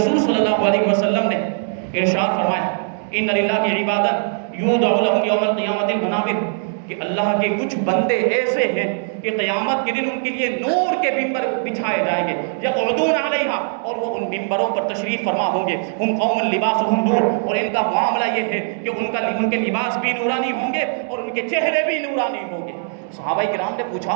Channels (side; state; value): left; silent; 65 dB below the other